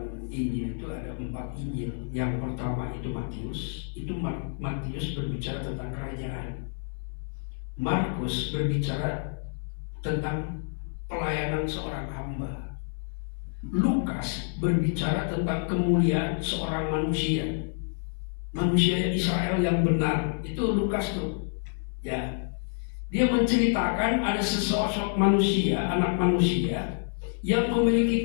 Injil itu ada 4 Injil. Yang pertama itu Matius. Itu Matius berbicara tentang kerajaan. Markus berbicara tentang pelayanan seorang hamba. Lukas berbicara tentang kemuliaan seorang manusia. Manusia Israel yang benar. Itu Lukas tuh, ya. Dia menceritakan ada sesosok manusia, anak manusia, yang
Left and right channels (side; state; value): right; silent; 59 dB below the other